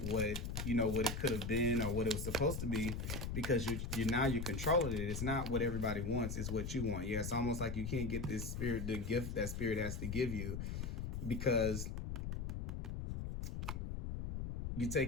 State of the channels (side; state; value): left; noise; rumble, 3 dB below the sound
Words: what it could have been or what it was supposed to be, because you're controlling it. It's not what everybody wants, it's what you want. Yeah, it's almost like you can't get this spirit, the gift that spirit has to give you, because you're